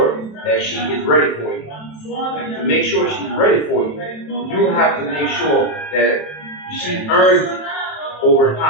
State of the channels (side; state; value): right; late; 27 ms